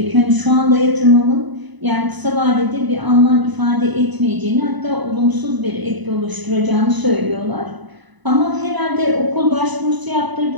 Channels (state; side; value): late; left; 1.0 ms